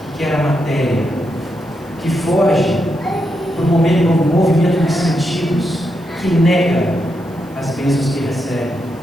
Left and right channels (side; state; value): right; noise; hiss, 28 dB below the sound